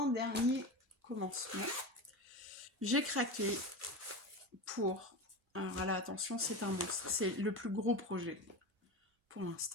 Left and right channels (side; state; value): both; normal; correlation 0.24